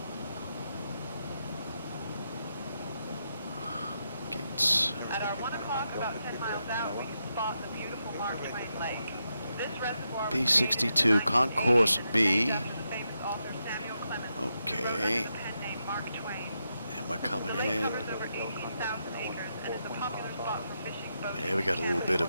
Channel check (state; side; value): inverted; both; correlation -0.84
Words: Gates. At our 1 o'clock, about 10 miles out, we spot the beautiful Mark Twain Lake. This reservoir B62, Concourse B. Okay. And we're coming in. Yeah, we got a little bit